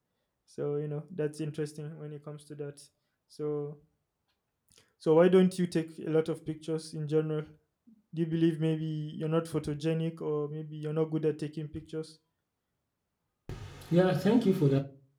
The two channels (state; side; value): identical; both; correlation 1.00